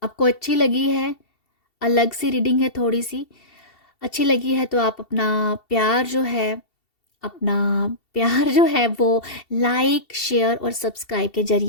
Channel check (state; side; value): late; right; 2.7 ms